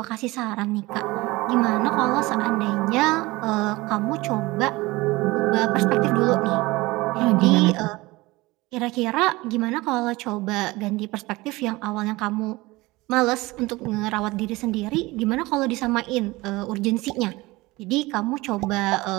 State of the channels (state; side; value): quieter; left; 21.2 dB